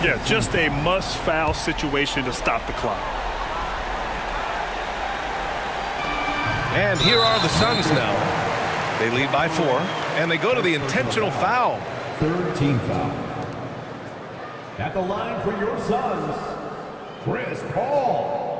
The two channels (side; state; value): both; identical; correlation 1.00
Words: Yeah, just a must-foul situation to stop the clock. And here are the Suns now. They lead by 4, and they go to the intentional foul. Third team foul. At the line for your Suns, Chris